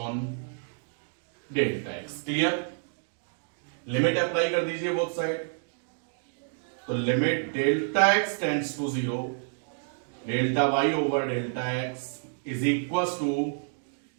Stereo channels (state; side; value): silent; left; digital silence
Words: delta x। Clear? Limit apply कर दीजिए बोथ साइड। तो limit delta x tends to 0, delta y over delta x is equal to